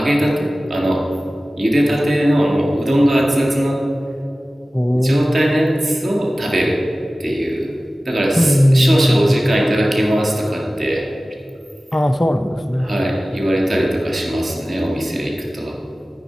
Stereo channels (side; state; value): both; normal; correlation 0.96